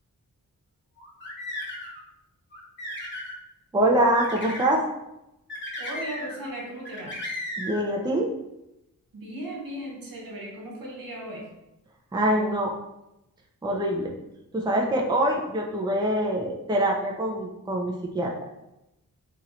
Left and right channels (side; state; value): both; normal; correlation 0.17